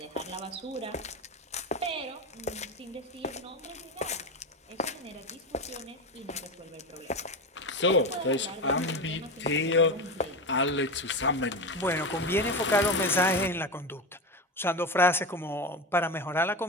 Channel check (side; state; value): both; normal; correlation 0.20